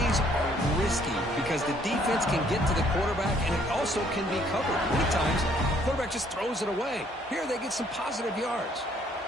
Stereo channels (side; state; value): both; normal; correlation 0.64